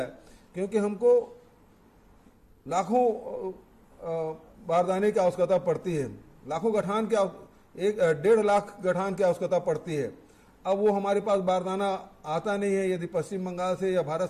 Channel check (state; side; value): identical; both; correlation 1.00